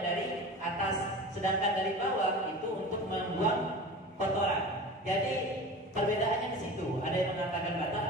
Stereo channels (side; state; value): both; normal; correlation 0.34